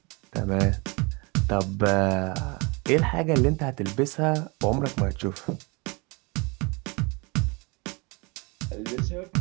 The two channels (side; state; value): left; quieter; 28.4 dB